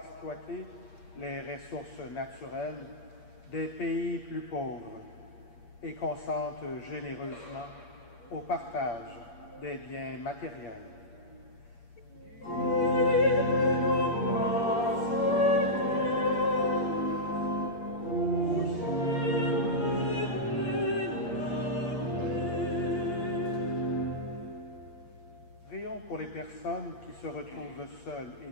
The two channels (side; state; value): right; late; 8.5 ms